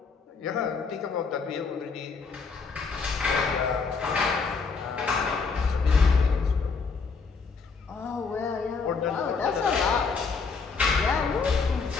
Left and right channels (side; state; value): right; quieter; 4.9 dB